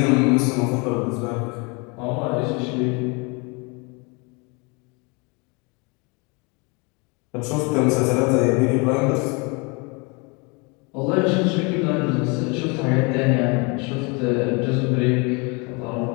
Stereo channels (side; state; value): right; quieter; 30.4 dB